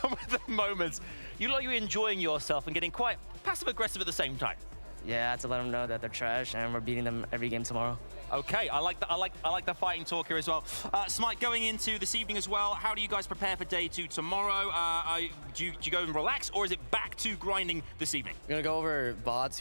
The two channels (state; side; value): inverted; both; correlation -1.00